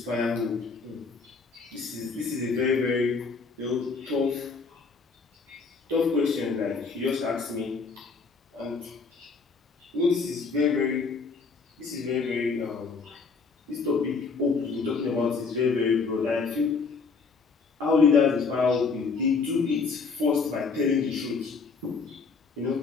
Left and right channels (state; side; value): quieter; right; 4.7 dB